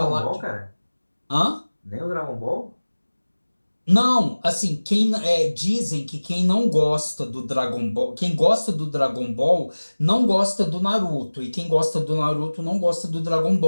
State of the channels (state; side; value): inverted; both; correlation -1.00